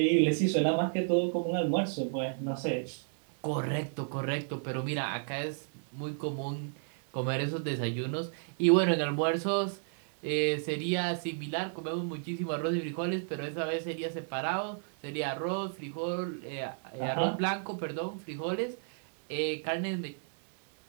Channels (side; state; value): left; silent; digital silence